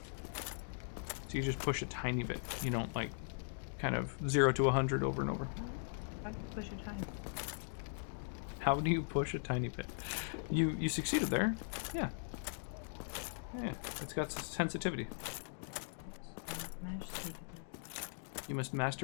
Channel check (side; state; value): right; silent; digital silence